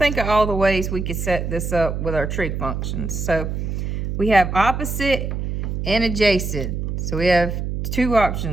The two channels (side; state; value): right; noise; hum, 3 dB below the sound